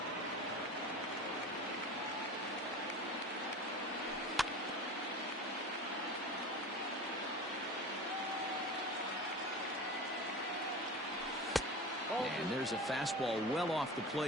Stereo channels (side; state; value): both; normal; correlation 0.33